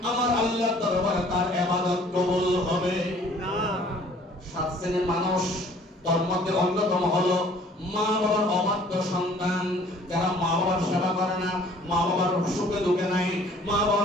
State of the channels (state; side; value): normal; both; correlation 0.54